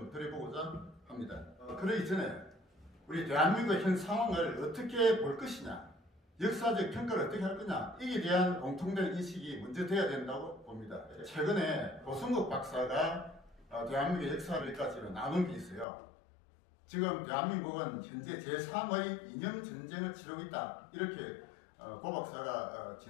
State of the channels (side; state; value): right; drops out; at 15.9 s